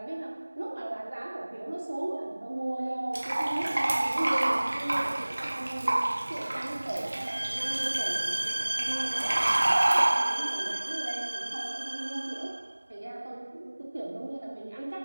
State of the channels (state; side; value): inverted; both; correlation -1.00